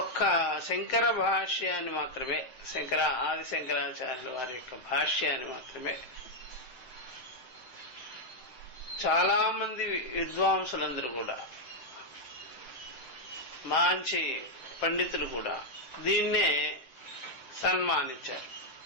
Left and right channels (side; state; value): right; late; 7.8 ms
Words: ఒక్క శంకర భాష్యాన్ని మాత్రమే, ఆది శంకరాచార్యుల వారి యొక్క భాష్యాన్ని మాత్రమే చాలా మంది విద్వాంసులందరూ కూడా, మంచి పండితులు కూడా దీన్నే సన్మానించారు,